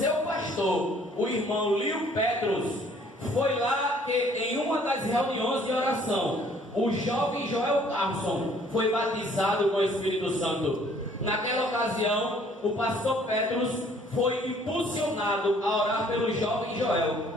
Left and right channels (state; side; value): normal; both; correlation 0.59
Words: pastor o irmão Leo Petrus. Foi lá que, em uma das reuniões de oração, o jovem Joel Carlson foi batizado com o Espírito Santo. Naquela ocasião, o pastor Petrus foi impulsionado a orar pelo jovem Joel,